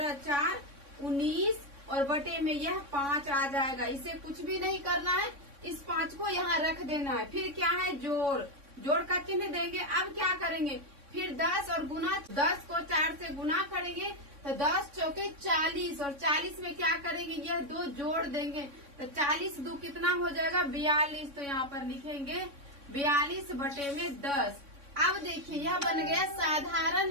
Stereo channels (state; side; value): late; left; 3.6 ms